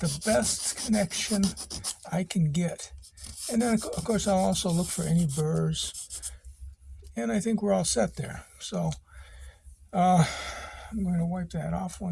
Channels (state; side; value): identical; both; correlation 1.00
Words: the best connection I can get. And then, of course, I'll also look for any burrs. And I think we're all set there. So I'm going to wipe that off